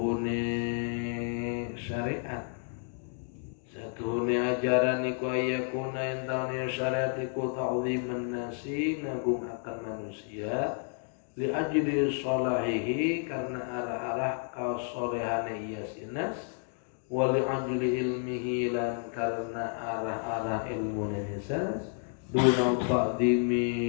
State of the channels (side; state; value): right; silent; 57 dB below the other